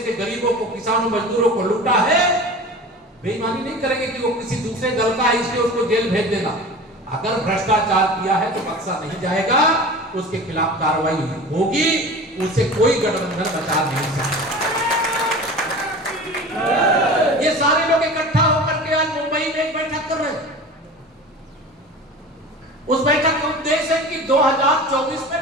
के गरीबों को, किसानों, मजदूरों को लूटा है, बेईमानी नहीं करेंगे कि वो किसी दूसरे दल का है इसलिए उसको जेल भेज देना। अगर भ्रष्टाचार किया है तो बख्शा नहीं जाएगा, उसके खिलाफ कार्रवाई होगी, उसे कोई गठबंधन बचा नहीं सकता। ये सारे लोग इकट्ठा होकर के आज मुंबई में एक बैठक कर रहे हैं। उस बैठक का उद्देश्य है कि 2024 में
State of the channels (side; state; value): both; normal; correlation 0.36